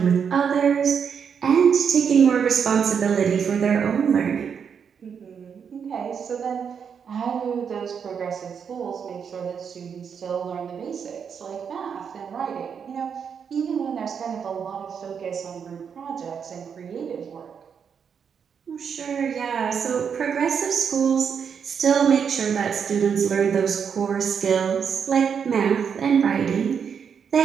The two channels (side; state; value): left; quieter; 7.0 dB